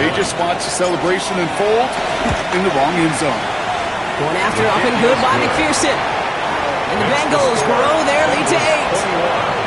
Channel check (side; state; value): both; identical; correlation 1.00